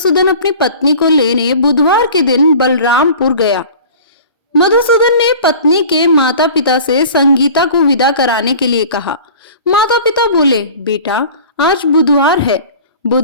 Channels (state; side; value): inverted; both; correlation -0.42